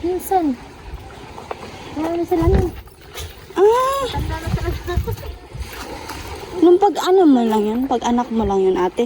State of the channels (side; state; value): both; identical; correlation 1.00